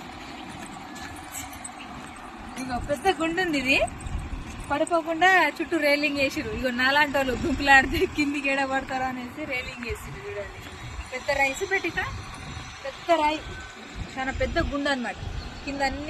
ఇగో పెద్ద గుండు ఉంది, ఇది పడిపోకుండా చుట్టూ రైలింగ్ వేసిరు. ఇగో నాలాంటి వాళ్ళు గుంపులాడితే కిందికి ఏడ పడతారా అనేసి రైలింగ్ వేసిరు. చూడండి పెద్ద రైస్ పెట్టిక, పెద్ద రాయి, చాలా పెద్ద గుండు అనమాట. కింద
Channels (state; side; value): identical; both; correlation 1.00